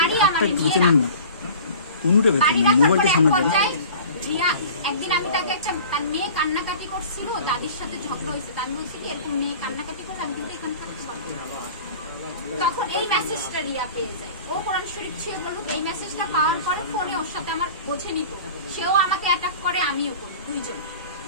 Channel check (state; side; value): inverted; both; correlation -0.41